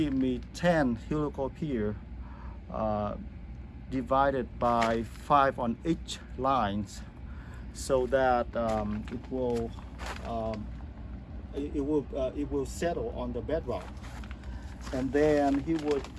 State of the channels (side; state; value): both; identical; correlation 1.00